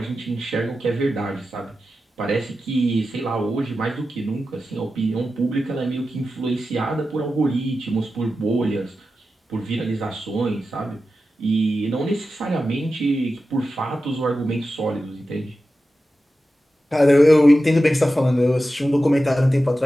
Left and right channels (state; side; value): normal; both; correlation 0.92